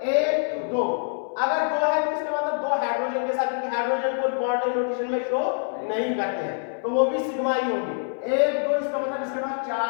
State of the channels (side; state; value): right; silent; 62 dB below the other